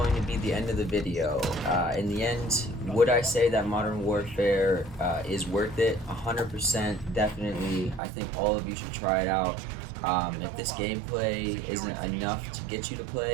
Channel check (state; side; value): drops out; left; at 8.0 s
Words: to be the end of the video. In the end, would I say that Modern Warfare is worth it? 100%, definitely. I think all of you should try it out. If this gameplay isn't enough to get you to